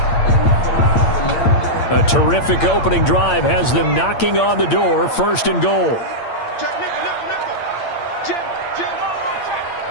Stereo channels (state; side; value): late; right; 8.7 ms